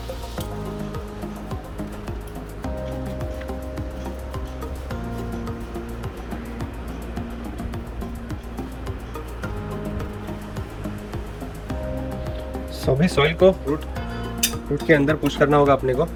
अभी सॉइल को रूट के अंदर पुश करना होगा अपने को।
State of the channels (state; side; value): identical; both; correlation 1.00